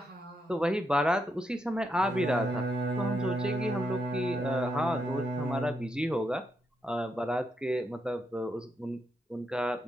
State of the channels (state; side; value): normal; both; correlation 0.81